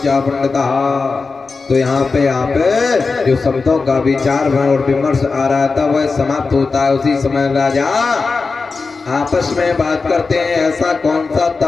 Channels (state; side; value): quieter; right; 4.3 dB